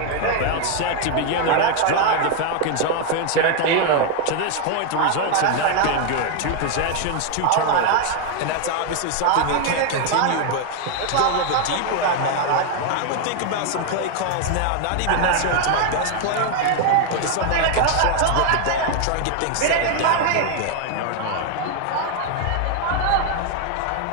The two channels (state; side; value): different; both; correlation 0.01